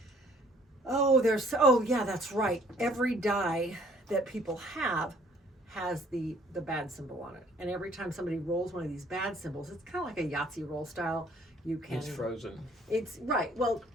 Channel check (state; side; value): normal; both; correlation 0.59